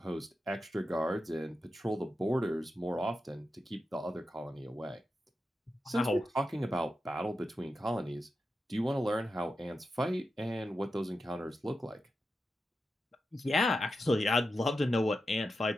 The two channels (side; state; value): both; normal; correlation 0.90